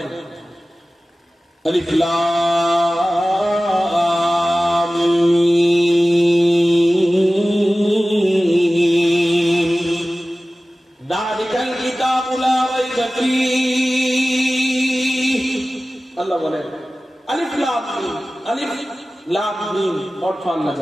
আলিফ লাম মিম যালিকাল কিতাবু লা রাইবা ফীহি। আল্লাহ বলেন আলিফ লাম মিম, আলিফ লাম মিম অর্থ আল্লাহ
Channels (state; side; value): normal; both; correlation 0.97